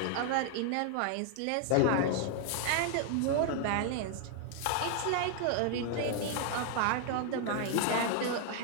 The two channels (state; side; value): different; both; correlation 0.00